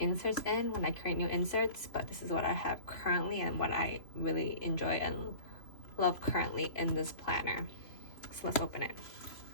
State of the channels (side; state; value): right; late; 2.8 ms